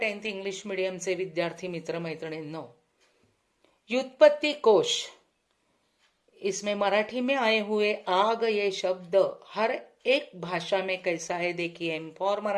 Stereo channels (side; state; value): both; identical; correlation 1.00